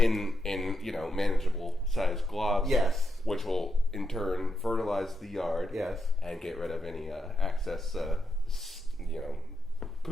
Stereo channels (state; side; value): normal; both; correlation 0.83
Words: manageable sized globs. Yes. Which will in turn fertilize the yard. Yes. And get rid of any excess